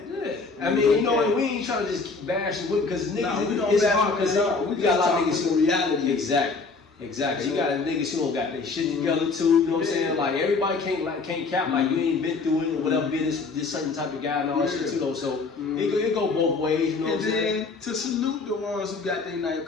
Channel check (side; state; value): right; quieter; 4.2 dB